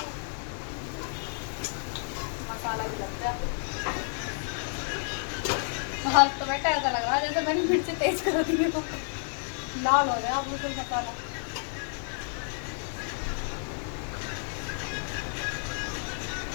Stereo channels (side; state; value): right; silent; 58 dB below the other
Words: मसाला भी लगता है बाहर, तो बेटा ऐसा लग रहा है जैसे मैंने मिर्ची तेज कर दी हो, लाल हो गया बिल्कुल मसाला।